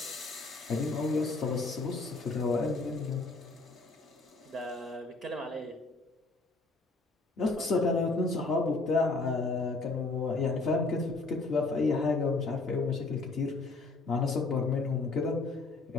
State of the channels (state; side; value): quieter; right; 3.5 dB